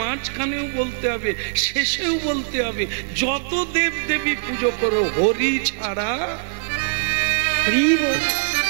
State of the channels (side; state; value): left; silent; digital silence